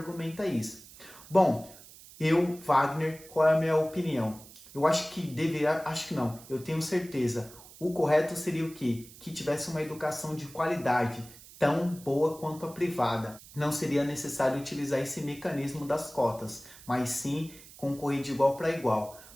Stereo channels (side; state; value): right; noise; hiss, 19 dB below the sound